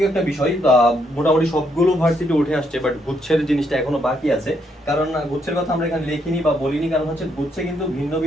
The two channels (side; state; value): both; normal; correlation 0.75